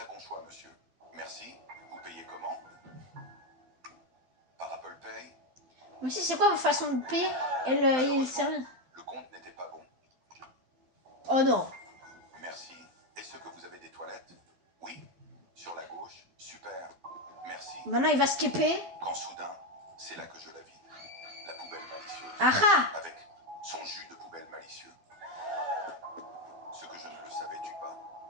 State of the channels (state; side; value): late; left; 12 ms